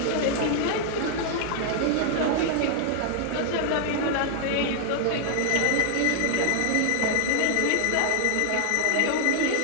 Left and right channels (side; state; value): both; different; correlation 0.00